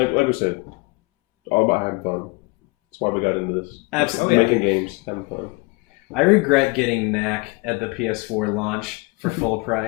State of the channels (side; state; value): right; quieter; 27.5 dB